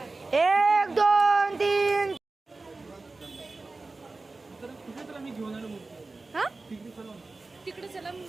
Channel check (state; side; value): quieter; left; 3.5 dB